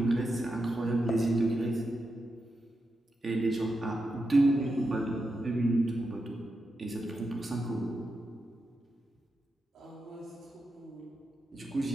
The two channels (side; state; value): both; normal; correlation 0.88